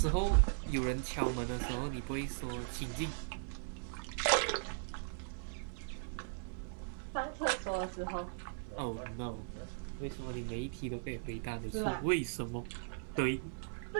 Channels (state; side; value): silent; left; digital silence